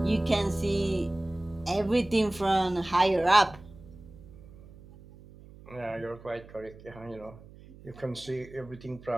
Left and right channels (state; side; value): noise; right; hum, 20 dB below the sound